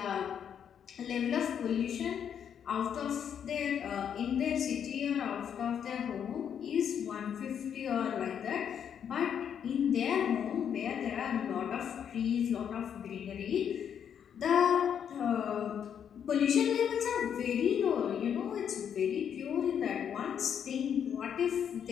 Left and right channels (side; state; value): right; quieter; 8.4 dB